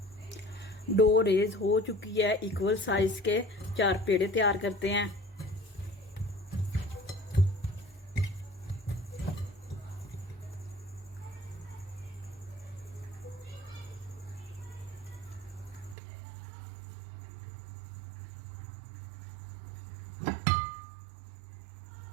डो रेज हो चुकी है। इक्वल साइज के 4 पेड़े तैयार करते हैं।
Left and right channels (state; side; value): drops out; left; at 16.0 s